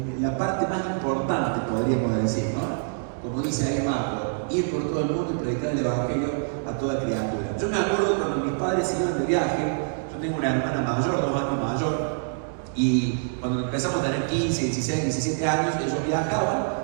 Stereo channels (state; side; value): silent; left; digital silence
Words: la parte más importante, podríamos decir, ¿no? Como dice ahí Marco, ir por todo el mundo y predicar el evangelio a toda criatura. Yo me acuerdo cuando mis padres iban de viaje. Yo tengo una hermana mayor, 2 años mayor, y cuando empezamos a tener 15, 16, 17 años, ellos viajaban